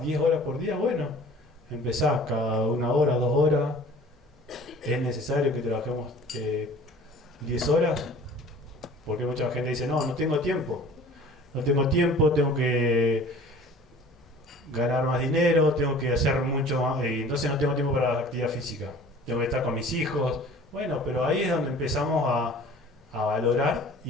10 horas por día? Bueno, empezás cada 1 hora, 2 horas. ¿Es necesario que trabajemos 10 horas? Porque mucha gente dice, no tengo tiempo. No tengo tiempo, tengo que ganar más dinero, tengo que hacer mucho más, y entonces no tengo tiempo para la actividad física. Tengo que estar con mis hijos. Bueno, pero ahí es donde empezamos a valorar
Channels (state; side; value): normal; both; correlation 0.46